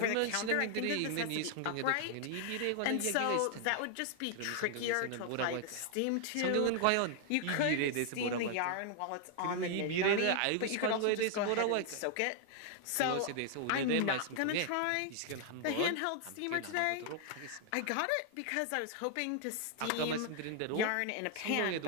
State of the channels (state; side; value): different; both; correlation 0.00